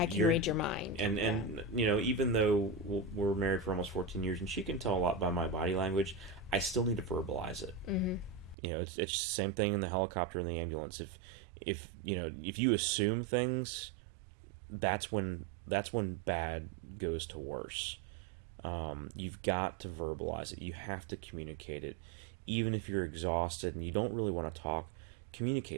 can read your mind. And even though we're married for almost 14 years and she can tell a lot by my body language, I still need to verbalize it. Mm-hmm. It's the same thing in the helicopter and the ambulance. If you assume things, that's when bad goes to worse. You've got to verbalize it. You have to communicate it. Even if you're exhausted and you don't really want to talk,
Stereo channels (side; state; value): left; drops out; at 8.6 s